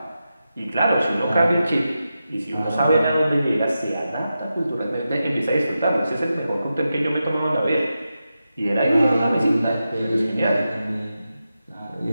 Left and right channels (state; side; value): inverted; both; correlation -0.90